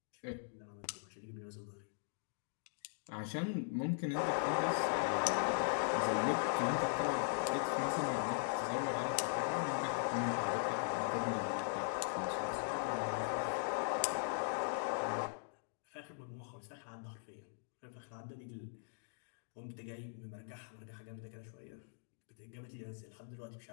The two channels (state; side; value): silent; right; digital silence